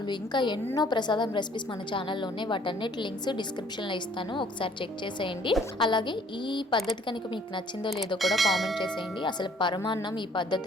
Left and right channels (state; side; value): normal; both; correlation 0.58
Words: ఇంకా ఎన్నో ప్రసాదం రెసిపీస్ మన ఛానల్లో ఉన్నాయి. వాటన్నిటి లింక్స్ డిస్క్రిప్షన్లో ఇస్తాను, ఒకసారి చెక్ చేసేయండి. అలాగే ఈ పద్ధతి కనుక మీకు నచ్చిందో లేదో కూడా కామెంట్ చేసేయండి. అసలు పరమాన్నం ఈ